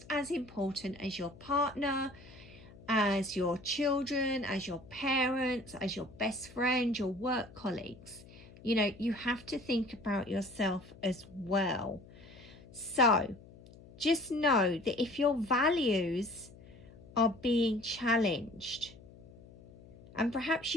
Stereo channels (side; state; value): left; noise; hum, 20 dB below the sound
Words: as important as your partner, as your children, as your parents, as your best friend, your work colleagues. You know, you have to think about yourself as well. So just know that if your values are being challenged, and perhaps